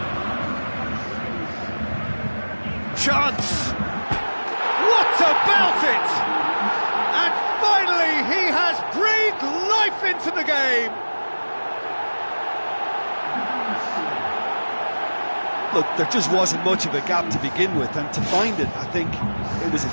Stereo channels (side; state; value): both; inverted; correlation -1.00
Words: Chance! What about it? And finally he has breathed life into the game. Look, there just wasn't much of a gap to begin with, and to find it, I think it was a